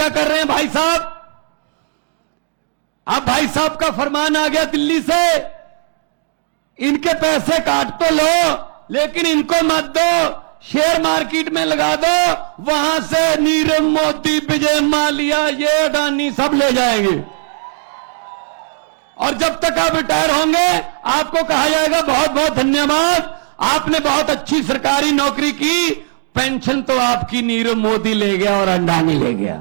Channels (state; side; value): silent; left; digital silence